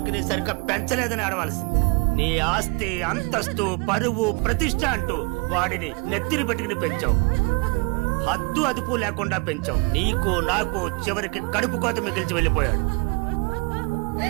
సరిగ్గా పెంచలేదని ఆడవలసింది. నీ ఆస్తి, అంతస్తు, పరువు, ప్రతిష్ట అంటూ వాడిని నెత్తిని పెట్టుకుని పెంచావు. హద్దు అదుపు లేకుండా పెంచావు. నీకు నాకు చివరికి కడుపు కోత మిగిల్చి వెళ్ళిపోయాడు.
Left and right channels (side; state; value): left; quieter; 30.2 dB